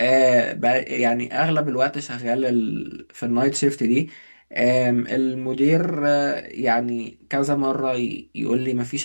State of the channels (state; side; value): inverted; both; correlation -1.00